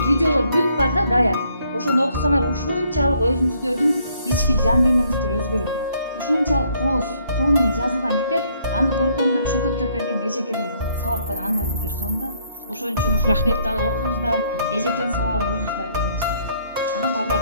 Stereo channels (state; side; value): inverted; both; correlation -0.66